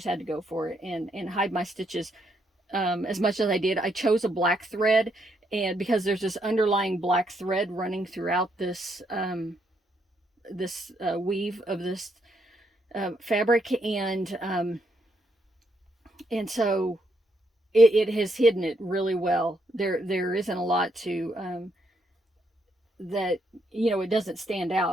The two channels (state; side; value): normal; both; correlation 0.75